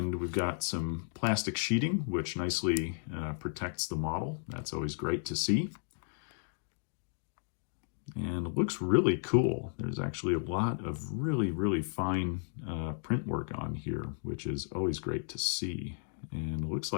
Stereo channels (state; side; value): silent; right; 55 dB below the other